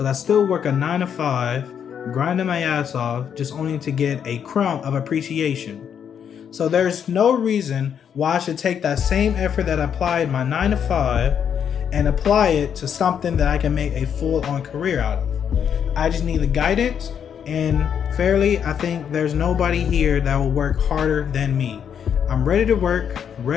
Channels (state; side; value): quieter; right; 8.1 dB